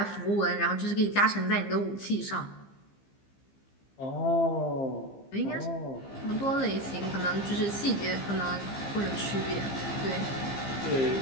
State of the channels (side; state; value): right; late; 15 ms